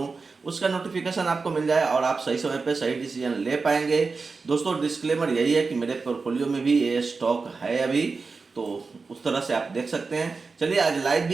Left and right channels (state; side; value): quieter; left; 4.4 dB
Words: उसका नोटिफिकेशन आपको मिल जाए और आप सही समय पे सही डिसीजन ले पाएंगे। दोस्तों डिस्क्लेमर यही है कि मेरे पोर्टफोलियो में भी ये स्टॉक है अभी, तो उस तरह से आप देख सकते हैं। चलिए आज लाइव